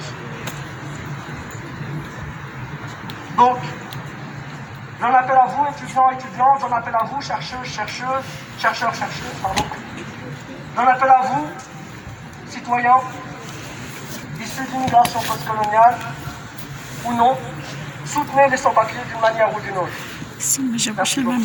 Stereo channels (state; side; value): identical; both; correlation 1.00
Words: Donc, j'en appelle à vous, étudiants, étudiantes, j'en appelle à vous, chercheurs, chercheuses, pardon. J'en appelle à vous, citoyens, issus de l'immigration postcoloniale ou non, soutenez les sans-papiers d'une manière ou d'une autre. ما جابوش الماء